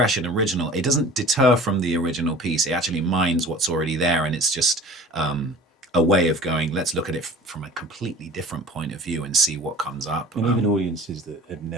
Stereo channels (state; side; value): normal; both; correlation 0.43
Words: and original. It doesn't deter from the original piece. It actually mines what's already there, and it's just a way of going, let's look at it from a completely different point of view and see what comes up. And even audiences that have